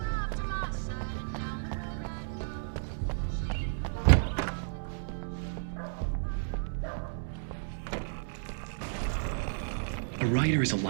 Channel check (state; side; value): silent; left; digital silence